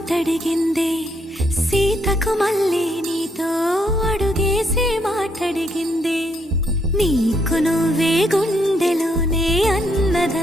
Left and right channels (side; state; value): both; normal; correlation 0.73